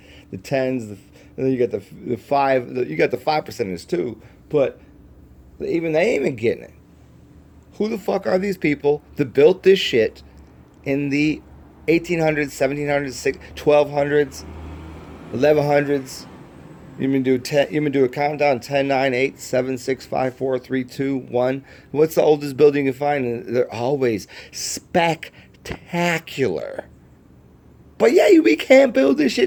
the 10s, and then you got the 5, you got the 5 percenters too, but even they ain't even getting it. Who the fuck are these people that built this shit in the 1800s, 1700s, 1200s, 1100s? You do a countdown: 10, 9, 8, 7, 6, 5, 4, 3, 2, 1. What's the oldest building you find? And they're always spectacular. But yeah, we can't build this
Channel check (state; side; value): identical; both; correlation 1.00